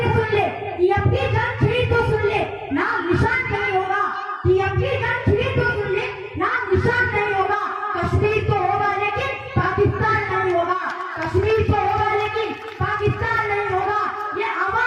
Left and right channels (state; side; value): identical; both; correlation 1.00